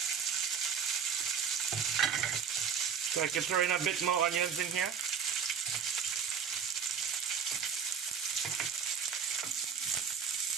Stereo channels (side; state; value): left; quieter; 6.7 dB